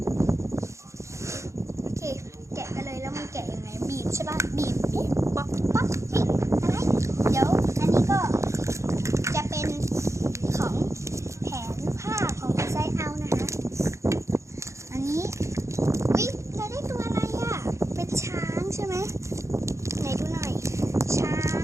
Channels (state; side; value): late; left; 0.14 ms